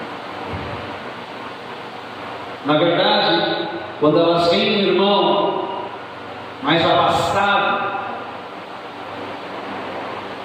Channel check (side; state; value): both; identical; correlation 1.00